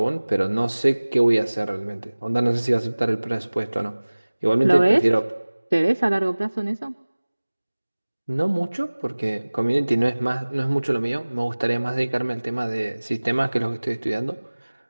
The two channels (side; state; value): both; inverted; correlation -1.00